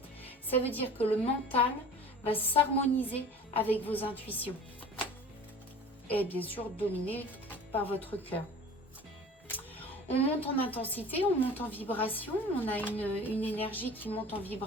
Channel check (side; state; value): both; normal; correlation 0.41